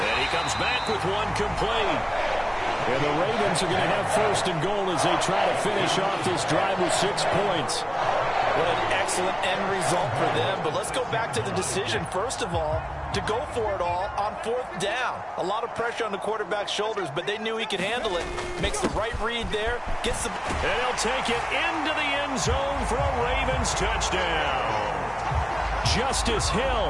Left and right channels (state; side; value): identical; both; correlation 1.00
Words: he comes back with one complete. And the Ravens are going to have first and goal as they try to finish off this drive with 6 points. What an excellent end result for them. But let's go back to the decision, first of all, to go for it all on 4th down. A lot of pressure on the quarterback's shoulders, but they knew he could handle it. Makes the right read there. Gets the... And he'll take it into the end zone for a Ravens touchdown. Justice